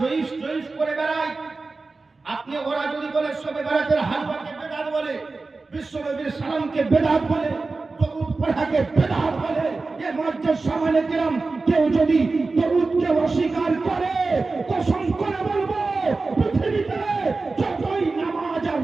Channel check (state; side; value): quieter; left; 3.8 dB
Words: করে বেড়ায়। আপনি ওরা যদি বলে সবে বেড়াতের হালুয়াকে বেদাত বলে, বিশ্বনবীর সালামকে বেদাত বলে, দরুদ পড়াকে বেদাত বলে, এ মজ্জার সামনে কিরাম কেউ যদি দরুদকে অস্বীকার করে কসম করে বলবো পৃথিবীতে যতই নামাজ আর